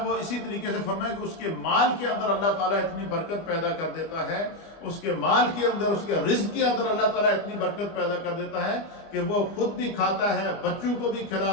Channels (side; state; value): right; late; 25 ms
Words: وہ اسی طریقے سے فرمایا کہ اس کے مال کے اندر اللہ تعالیٰ اتنی برکت پیدا کر دیتا ہے، اس کے مال کے اندر، اس کے رزق کے اندر اللہ تعالیٰ اتنی برکت پیدا کر دیتا ہے کہ وہ خود بھی کھاتا ہے، بچوں کو بھی